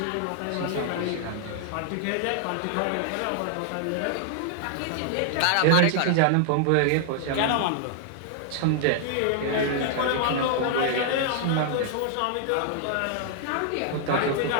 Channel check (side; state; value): both; different; correlation -0.01